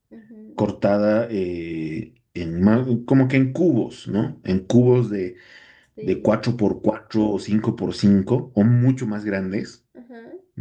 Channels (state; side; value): identical; both; correlation 1.00